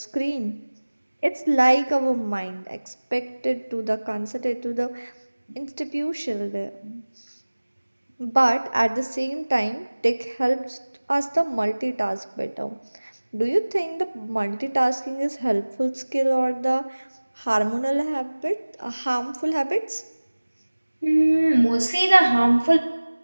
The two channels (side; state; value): both; inverted; correlation -1.00